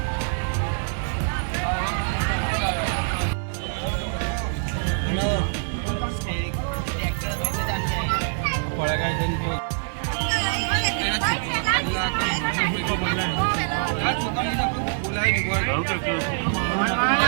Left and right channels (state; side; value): silent; left; digital silence